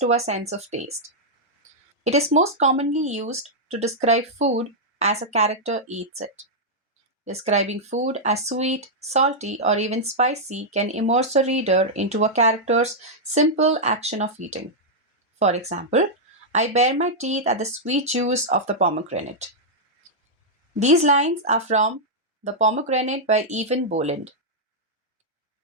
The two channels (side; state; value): both; normal; correlation -0.06